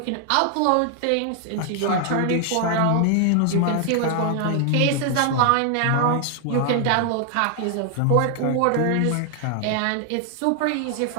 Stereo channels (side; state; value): both; different; correlation 0.00